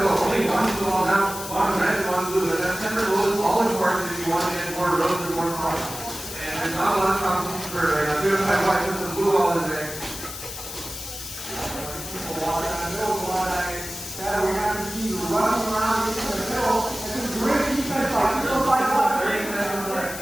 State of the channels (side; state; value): left; noise; hiss, 9 dB below the sound